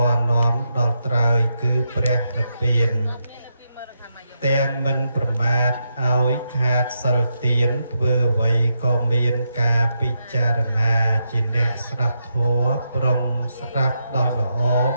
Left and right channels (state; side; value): inverted; both; correlation -0.83